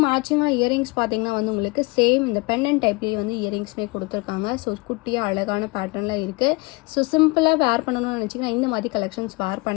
மேட்சிங்காக இயரிங்ஸ் பார்த்தீங்கன்னா வந்து உங்களுக்கு சேம் இந்த பென்னன் டைப்லேயே வந்து இயரிங்ஸ்மே கொடுத்துருக்காங்க. ஸோ குட்டியாக அழகான பேட்டர்னில் இருக்குது. ஸோ சிம்பிளாக வேர் பண்ணணும்னு நினச்சிங்கன்னா இந்த மாதிரி கலெக்ஷன்ஸ் வேர்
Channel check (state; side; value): quieter; right; 25.5 dB